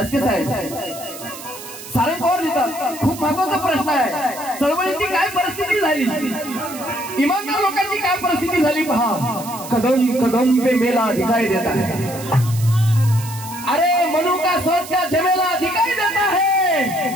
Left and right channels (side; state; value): right; noise; hiss, 13 dB below the sound